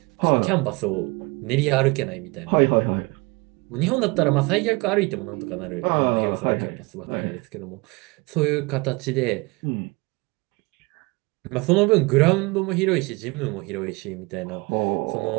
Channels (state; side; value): quieter; left; 26.0 dB